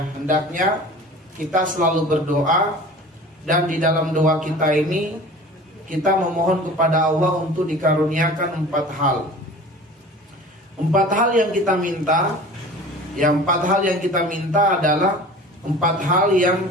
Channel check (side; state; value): both; normal; correlation 0.41